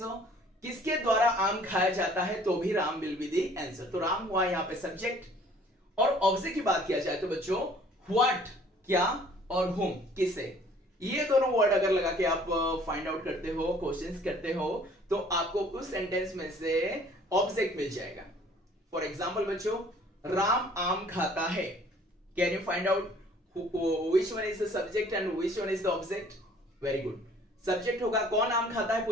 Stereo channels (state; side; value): normal; both; correlation 0.55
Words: किसके द्वारा आम खाया जाता है, तो भी Ram will be the answer. तो राम हुआ यहां पे सब्जेक्ट। और ऑब्जेक्ट की बात किया जाए तो बच्चों व्हाट क्या और whom किसे, ये दोनों वर्ड अगर लगा के आप फाइंड आउट करते हो, क्वेश्चंस करते हो, तो आपको उस सेंटेंस में से ऑब्जेक्ट मिल जाएगा। फॉर एग्जांपल बच्चों, राम आम खाता है, can you find out which one is the subject and which one is the object? Very good. Subject होगा कौन आम खाता है,